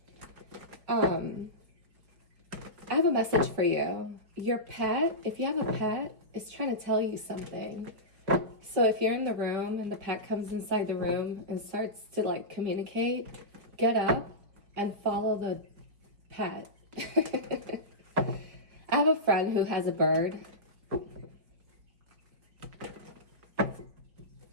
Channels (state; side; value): late; left; 4.6 ms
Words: I have a message for you. Your pet, if you have a pet, is trying to tell you something. So if you're in the room and the pet comes inside the room and starts to like communicate, get up and follow the pet. I have a friend who has a bird.